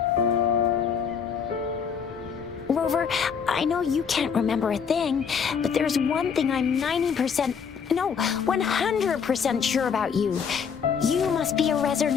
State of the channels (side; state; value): right; quieter; 6.7 dB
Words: Rover, I know you can't remember a thing, but there's one thing I'm 90%, no, 100% sure about you. You must be a